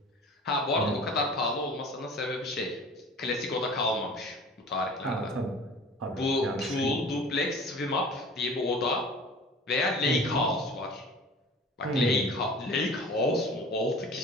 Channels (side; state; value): both; normal; correlation 0.42